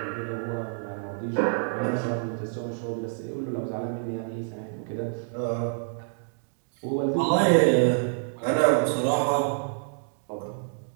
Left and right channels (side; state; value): left; silent; digital silence